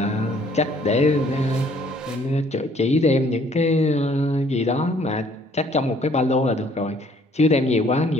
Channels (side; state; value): both; normal; correlation 0.61